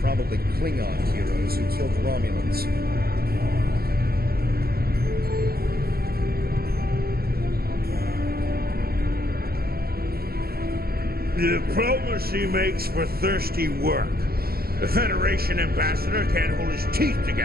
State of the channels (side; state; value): left; late; 0.44 ms